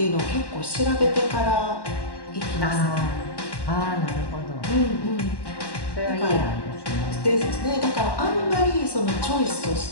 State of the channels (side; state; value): right; late; 1.1 ms